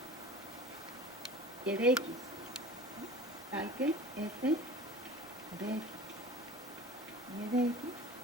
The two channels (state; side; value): normal; both; correlation 0.39